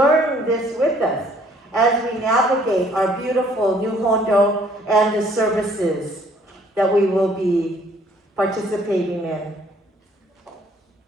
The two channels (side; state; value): both; normal; correlation 0.61